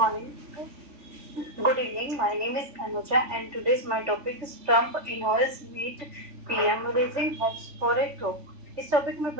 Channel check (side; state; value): left; late; 3.5 ms